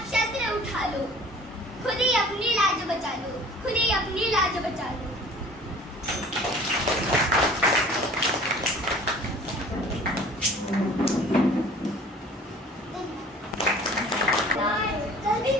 शस्त्र उठा लो. खुद ही अपनी लाज बचा लो, खुद ही अपनी लाज बचा लो. कल भी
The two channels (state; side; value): normal; both; correlation 0.48